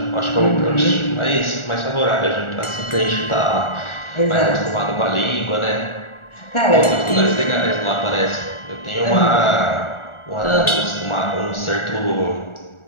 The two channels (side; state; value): right; late; 1.4 ms